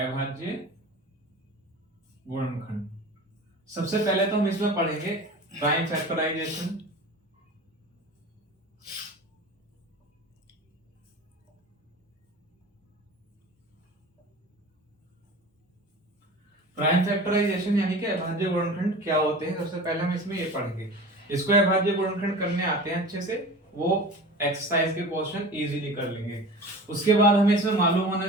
गुणनखंड सबसे पहले तो हम इसमें पढ़ेंगे प्राइम फैक्टराइजेशन। प्राइम फैक्टराइजेशन यानी कि अभाज्य गुणनखंड क्या होते हैं, सबसे पहले हम इसमें ये पढ़ेंगे। इसको अभाज्य गुणनखंड करने आते हैं अच्छे से, वो एक्सरसाइज के क्वेश्चन इजीली कर लेंगे। उसके बाद हमें इसमें मालूम होना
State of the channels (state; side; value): normal; both; correlation 0.36